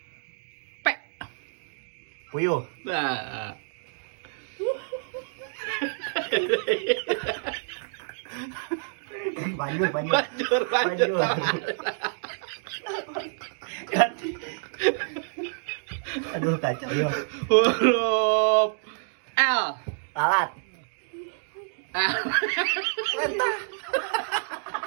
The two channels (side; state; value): left; silent; digital silence